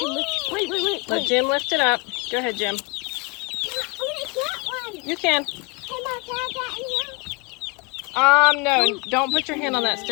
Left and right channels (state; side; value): quieter; right; 27.8 dB